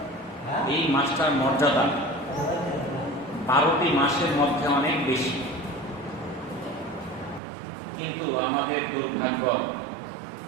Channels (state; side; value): drops out; left; at 7.4 s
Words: এই মাসটার মর্যাদা 12টি মাসের মধ্যে অনেক বেশি, কিন্তু আমাদের দুর্ভাগ্য,